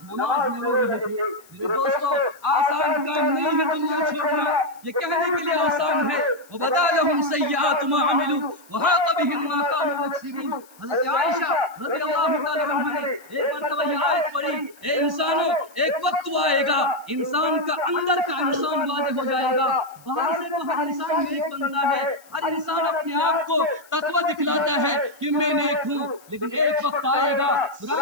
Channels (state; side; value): noise; left; hiss, 26 dB below the sound